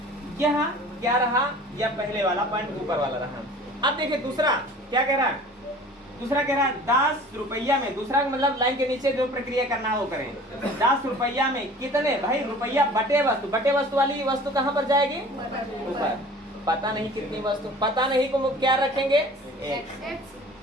यहाँ क्या रहा? या पहले वाला पॉइंट ऊपर वाला रहा। अब देखिए दूसरा क्या कह रहा है? दूसरा कह रहा है 10 रुपया में, दूसरा मतलब लाइन के नीचे जो प्रक्रिया करना है वो करें। 10 रुपया में कितने, भाई रुपया बटे वस्तु, बटे वस्तु वाली वस्तु कहाँ पर जाएगी, ऊपर। पता नहीं कितनी वस्तु, पता नहीं को क्या रखेंगे, एक।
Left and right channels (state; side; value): normal; both; correlation 0.45